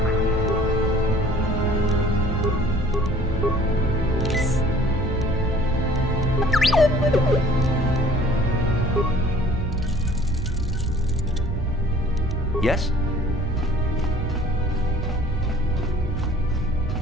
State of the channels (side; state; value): both; normal; correlation 0.52